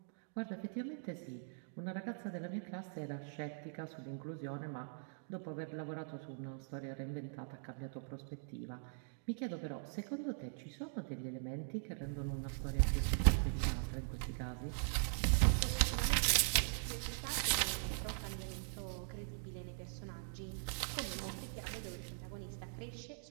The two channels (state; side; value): silent; left; digital silence